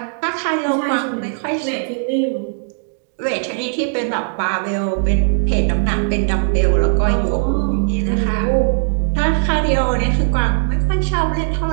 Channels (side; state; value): left; silent; digital silence